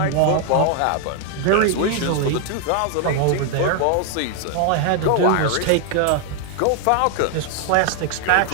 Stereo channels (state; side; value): different; both; correlation 0.00